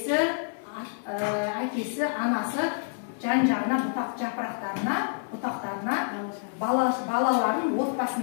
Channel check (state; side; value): silent; right; digital silence